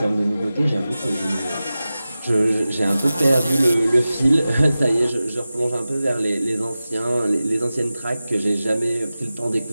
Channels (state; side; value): inverted; both; correlation -0.95